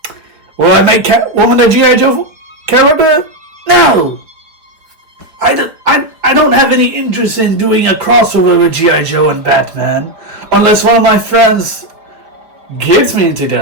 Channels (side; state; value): left; late; 4.6 ms